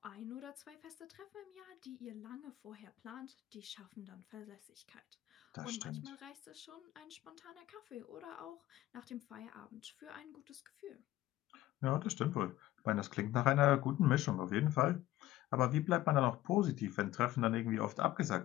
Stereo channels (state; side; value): quieter; right; 15.3 dB